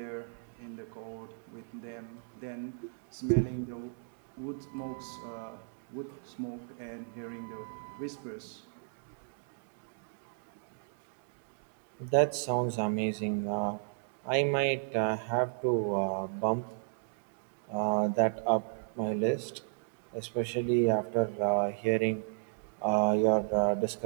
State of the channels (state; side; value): silent; left; digital silence